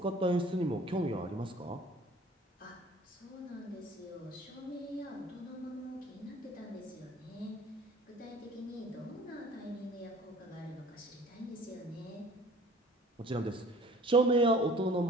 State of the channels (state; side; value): normal; both; correlation 0.50